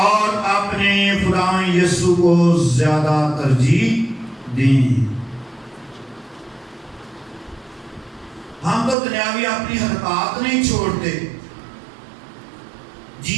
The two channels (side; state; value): left; drops out; at 9.0 s